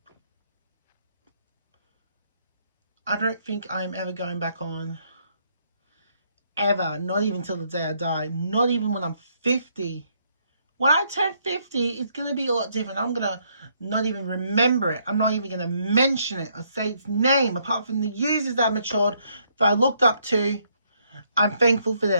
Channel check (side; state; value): both; inverted; correlation -0.71